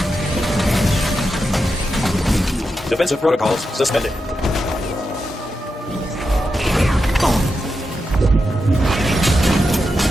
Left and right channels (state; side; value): normal; both; correlation 0.87